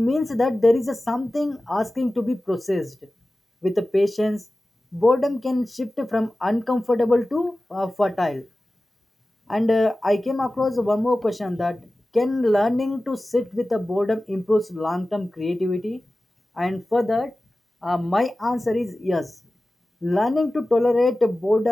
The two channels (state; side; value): normal; both; correlation 0.96